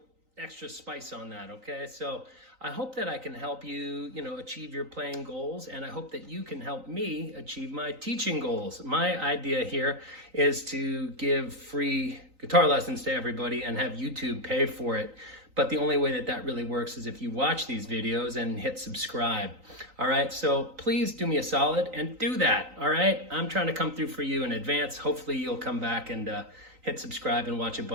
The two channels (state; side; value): late; left; 3.9 ms